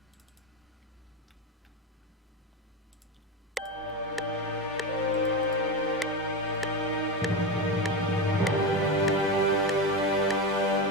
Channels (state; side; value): normal; both; correlation 0.17